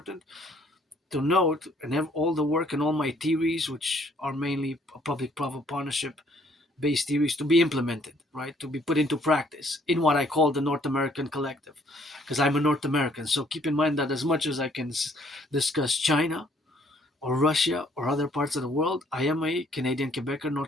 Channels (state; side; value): normal; both; correlation 0.64